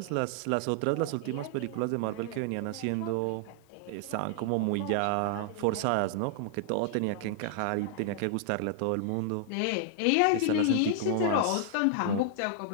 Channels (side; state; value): both; different; correlation -0.01